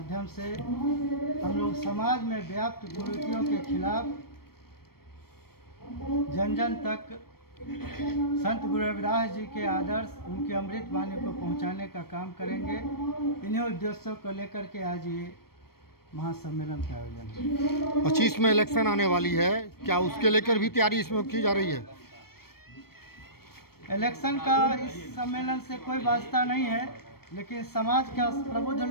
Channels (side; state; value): right; late; 0.94 ms